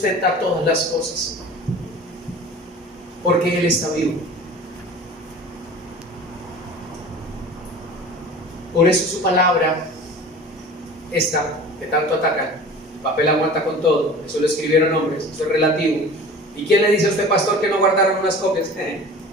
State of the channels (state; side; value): normal; both; correlation 0.40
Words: todas las cosas, porque Él está vivo. Por eso su palabra, esta que tanto atacan, el papel aguanta con todo, eso lo escribieron hombres, eso es relativo. ¿Y quién le dice a usted, pastor, que no guardaron unas copias?